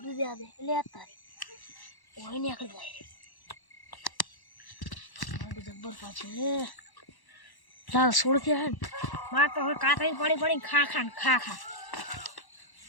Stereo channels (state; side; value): late; right; 1.1 ms